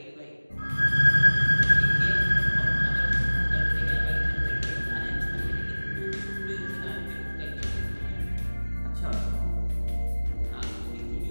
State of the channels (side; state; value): both; inverted; correlation -1.00